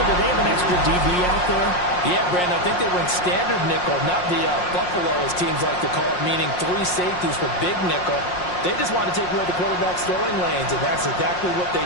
Did they have an extra DB out there? Yeah, Brandon, I think they went standard nickel, not the Buffalo, as teams like to call it, meaning 3 safeties for big nickel. They just wanted to take away the quarterback's throwing lanes, and that's exactly what they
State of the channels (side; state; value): right; late; 5.6 ms